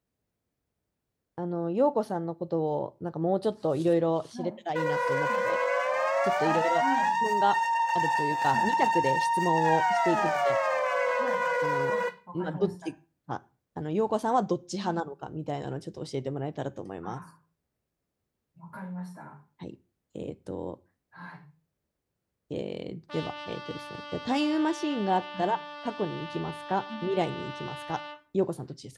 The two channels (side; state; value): both; identical; correlation 1.00